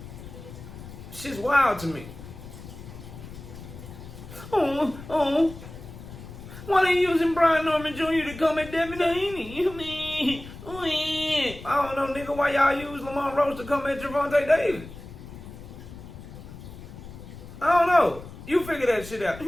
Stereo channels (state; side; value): noise; left; rumble, 14 dB below the sound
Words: Shit's wild to me. Oh. Why they using Brian Norman Jr. to come at Devin Haney? I don't know, nigga, why y'all use Lamont Roach to come at Gervonta Davis? I don't know. You figure that shit out.